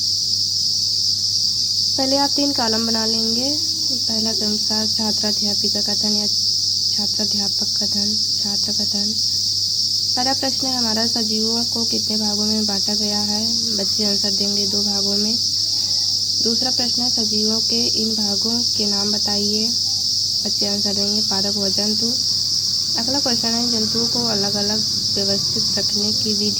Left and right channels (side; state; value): both; identical; correlation 1.00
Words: पहले आप 3 कॉलम बना लेंगे। पहला क्रम छात्राध्यापिका कथन या छात्राध्यापक कथन, छात्र कथन। पहला प्रश्न है हमारा, सजीवों को कितने भागों में बांटा गया है। बच्चे आंसर देंगे 2 भागों में। दूसरा प्रश्न है सजीवों के इन भागों के नाम बताइए। बच्चे आंसर देंगे पादप व जंतु। अगला क्वेश्चन है जंतुओं को अलग अलग व्यवस्थित रखने की